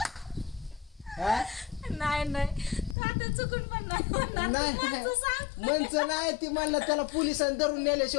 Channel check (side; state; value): right; drops out; at 3.0 s